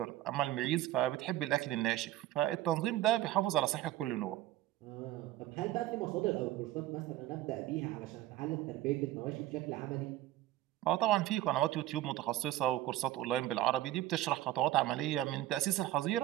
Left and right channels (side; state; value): left; quieter; 14.6 dB